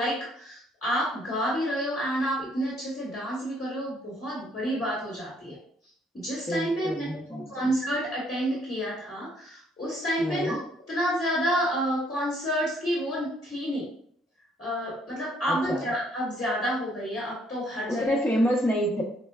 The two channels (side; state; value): both; normal; correlation 0.66